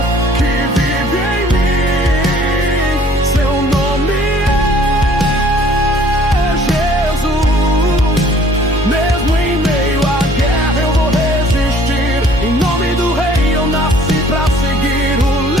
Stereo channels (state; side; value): normal; both; correlation 0.56